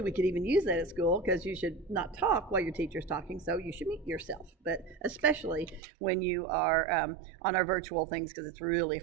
could even use that at school because you should not talk while your teacher is talking. So you should mute yourself, but especially when you are on our virtual things because it's really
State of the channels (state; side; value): drops out; left; at 5.8 s